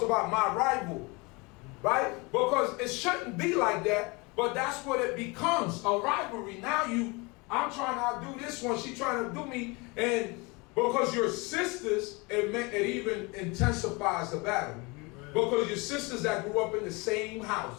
about my rival. Right? Because it shouldn't be like that, but that's what it becomes, a rivalry. Now I'm trying to outdo this one, she's trying to do me, and because you're sisters, it even intensifies the battle. Because your sisters that grew up in the same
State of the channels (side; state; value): right; quieter; 27.1 dB